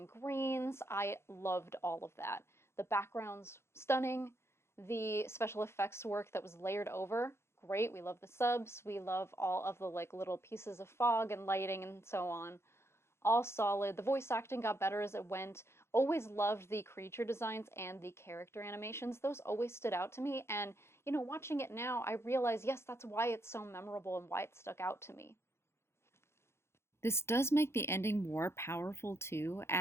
greens. I loved all of that. The backgrounds, stunning. The special effects work that was layered over, great. We love the subs. We love all of the like little pieces of fog and lighting and so on. All solid. The voice acting got better as it went. Always loved the creature designs and the character animations. Those always stood out to me. And, you know, watching it now, I realize, yes, that's why it's so memorable and why it stuck out to me. This does make the ending more powerful too,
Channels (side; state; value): right; late; 0.12 ms